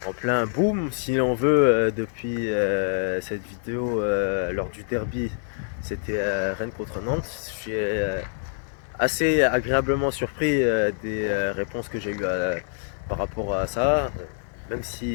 en plein boom, si l'on veut, depuis cette vidéo lors du derby. C'était Rennes contre Nantes. Je suis assez agréablement surpris des réponses que j'ai eues par rapport à ça, même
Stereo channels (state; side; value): silent; right; digital silence